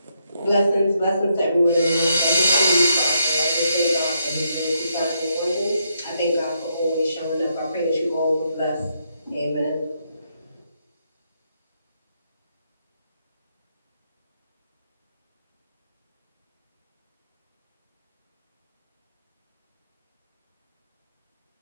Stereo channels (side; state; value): both; inverted; correlation -0.78